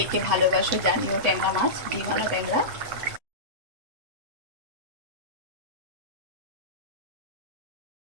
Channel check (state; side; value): late; left; 8.0 ms